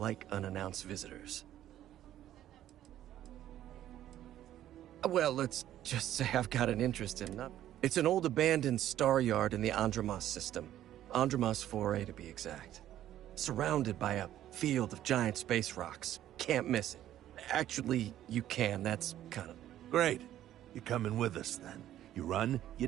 unannounced visitors. Well, let's just say I've got an interest in them. It's an old abandoned star yard in the Andromos system. Andromos 4A to be exact. Surrounded by a field of giant space rocks. Can't miss it. Actually, you can. That's kind of... Great. You're coming with us, then. You run, you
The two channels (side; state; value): left; quieter; 12.4 dB